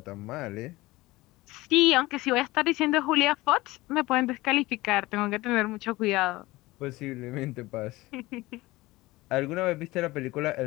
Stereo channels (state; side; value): quieter; right; 19.9 dB